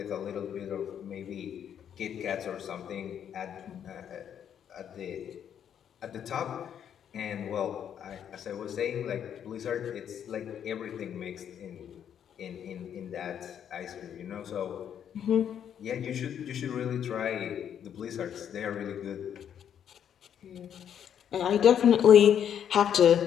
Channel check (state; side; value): quieter; right; 9.0 dB